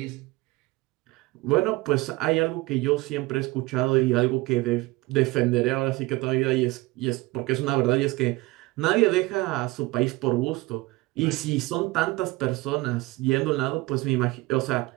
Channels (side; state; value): left; quieter; 21.3 dB